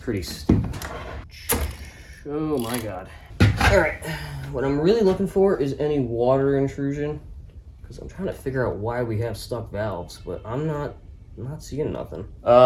stupid. Oh my god. Alright, what I'm really looking for is any water intrusion, because I'm trying to figure out why we have stuck valves, but I'm not seeing nothing. You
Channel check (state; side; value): identical; both; correlation 1.00